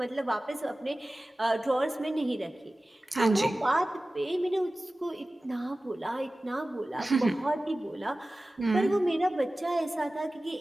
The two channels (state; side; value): normal; both; correlation 0.96